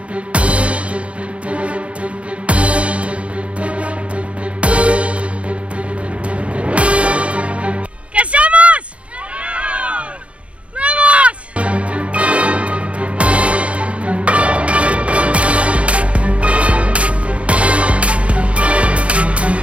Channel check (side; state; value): left; late; 0.062 ms